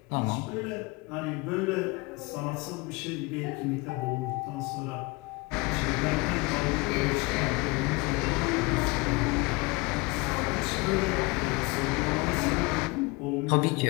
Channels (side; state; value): right; quieter; 26.1 dB